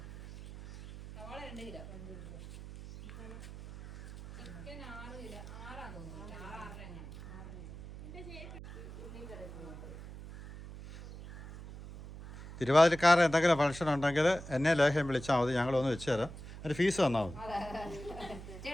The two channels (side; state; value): right; noise; hum, 13 dB below the sound